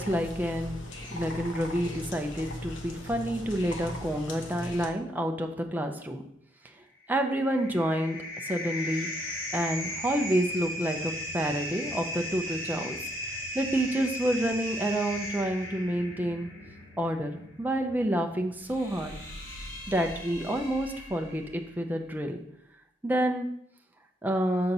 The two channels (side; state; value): both; normal; correlation 0.76